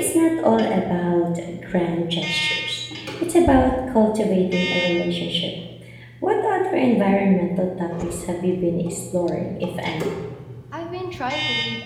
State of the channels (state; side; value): identical; both; correlation 1.00